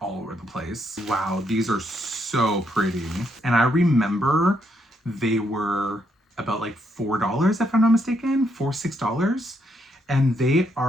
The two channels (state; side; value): normal; both; correlation 0.76